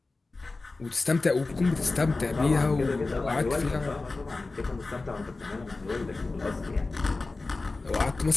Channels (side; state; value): right; quieter; 3.5 dB